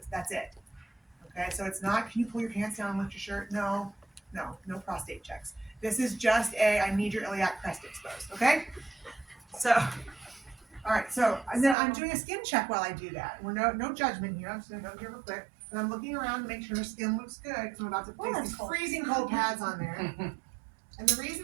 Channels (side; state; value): left; drops out; at 11.8 s